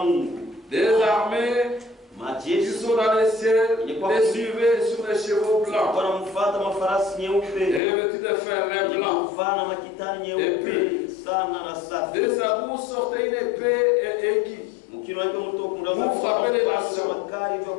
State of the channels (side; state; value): right; drops out; at 7.8 s